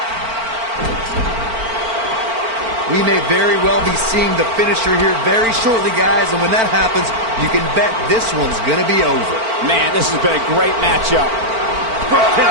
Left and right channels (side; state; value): left; late; 4.4 ms